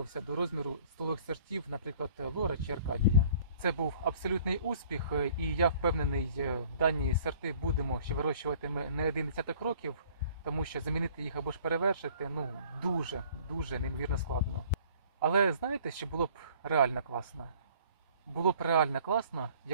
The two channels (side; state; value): both; inverted; correlation -0.54